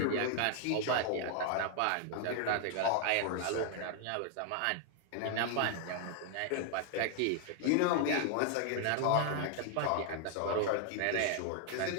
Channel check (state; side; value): different; both; correlation 0.00